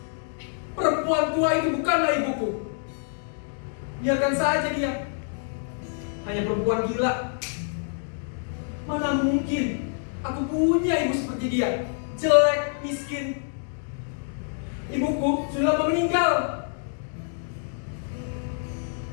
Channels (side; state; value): right; silent; digital silence